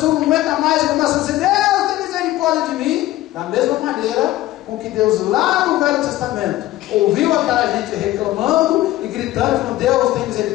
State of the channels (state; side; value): quieter; right; 15.9 dB